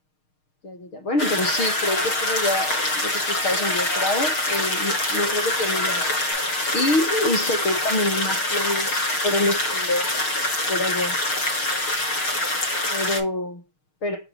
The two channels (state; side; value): late; right; 6.5 ms